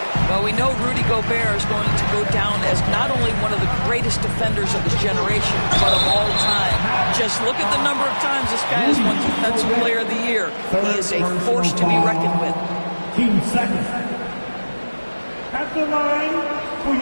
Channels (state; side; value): inverted; both; correlation -1.00